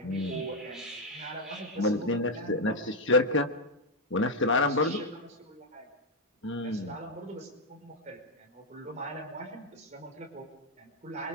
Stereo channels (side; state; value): both; normal; correlation 0.01